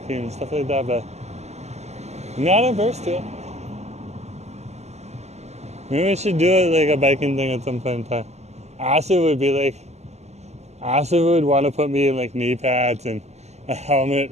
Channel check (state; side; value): late; left; 0.32 ms